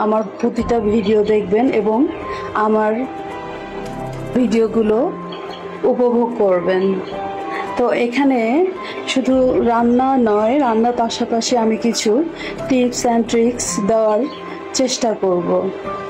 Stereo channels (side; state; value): both; identical; correlation 1.00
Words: আমার প্রতিটা ভিডিও দেখবেন এবং আমার ভিডিওগুলো উপভোগ করবেন। তো এখানে শুধু রান্না নয়, রান্নার পাশাপাশি আমি কিছু টিপস অ্যান্ড ট্রিক্স দেওয়ার চেষ্টা করব।